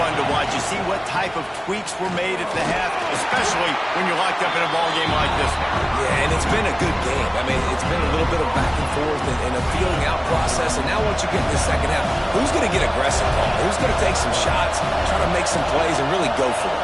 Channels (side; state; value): both; identical; correlation 1.00